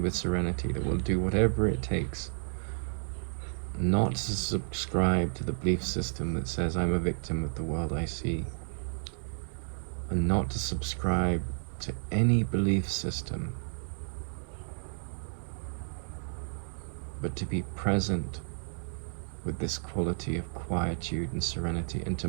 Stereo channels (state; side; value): silent; left; digital silence